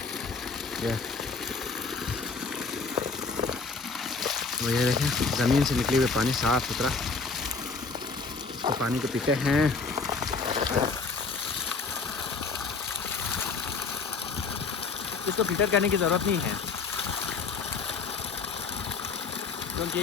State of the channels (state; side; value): quieter; right; 4.5 dB